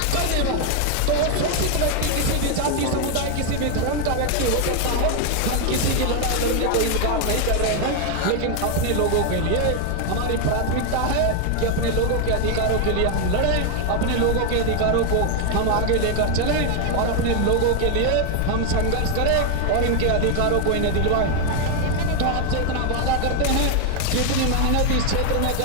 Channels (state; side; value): different; both; correlation 0.00